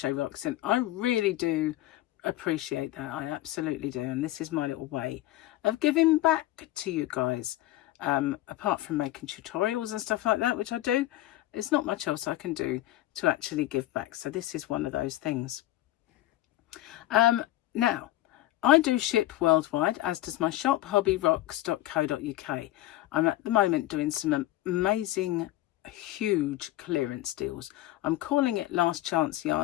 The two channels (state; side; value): quieter; right; 15.6 dB